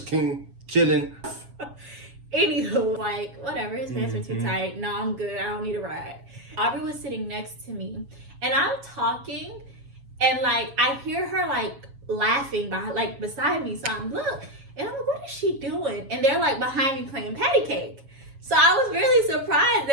came chilling. Anywho, like, whatever, his pants were too tight. No, I'm good. I don't need a ride. Aubrey was sitting next to me, and I'm talking, and, like, I hear her, like, laughing beside me. So I'm, look, and I'm like, what is she doing? And they're, like, behind me playing patty cake. So I was really surprised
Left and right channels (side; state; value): left; late; 7.3 ms